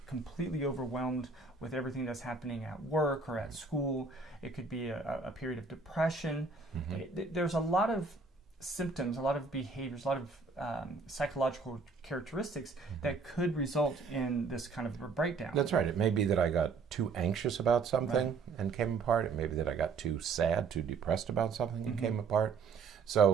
completely overwhelmed with everything that's happening at work or at school. It could be a period of depression. There's a lot of symptoms, a lot of behaviors, a lot of psychological characteristics that could result in this kind of a breakdown. That's right. It may be that I got too anxious about something and came apart. It may be that I got too sad, too depressed about something and came apart.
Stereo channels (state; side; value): quieter; left; 4.5 dB